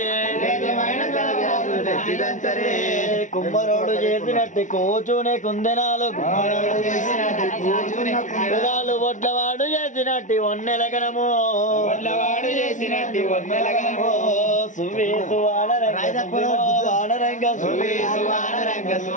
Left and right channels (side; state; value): right; late; 0.37 ms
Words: తేజమైన కాకిరకులు తెచ్చి దంచరే కుమ్మరోడు చేసినట్టు కూచునే కుందెనాలు కుమ్మరోడు చేసినట్టు కూచునే కుందెనాలు వడ్లవాడు చేసినట్టు ఒన్నెలగనము వడ్లవాడు చేసినట్టు ఒన్నెలగనము సువి సువానరంగ వానరంగ సువి సువానరంగ